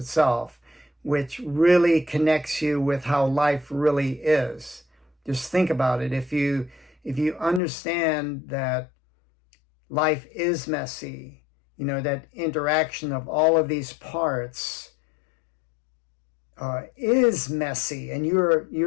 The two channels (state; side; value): drops out; right; at 7.6 s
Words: which really connects you with how life really is. Just think about it. If you understand that life is messy, that interaction of all of these parts is messy, and